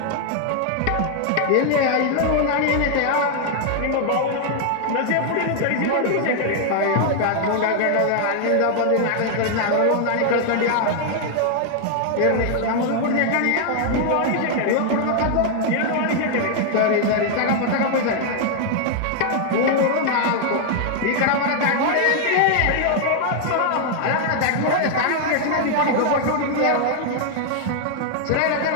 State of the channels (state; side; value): different; both; correlation 0.00